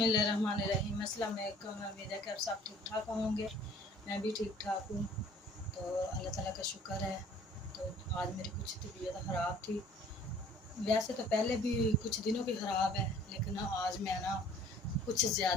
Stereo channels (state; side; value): normal; both; correlation 0.53